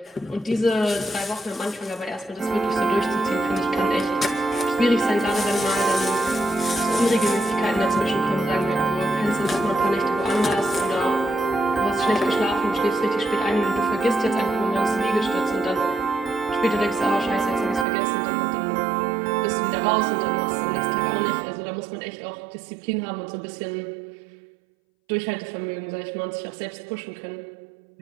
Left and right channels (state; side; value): drops out; left; at 17.9 s